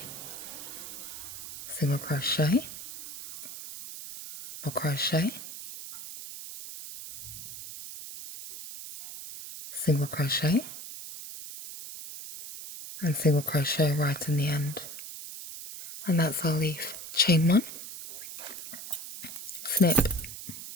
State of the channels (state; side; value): noise; right; hiss, 11 dB below the sound